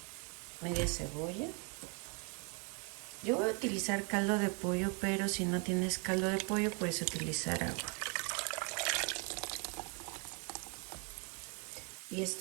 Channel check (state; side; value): quieter; left; 35.4 dB